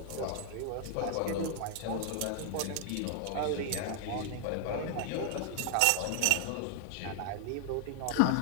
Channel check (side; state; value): both; different; correlation 0.00